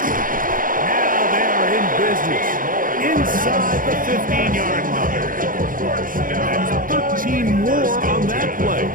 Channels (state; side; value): late; left; 0.40 ms